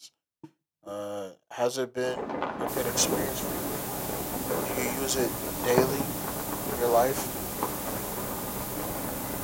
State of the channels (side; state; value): both; identical; correlation 1.00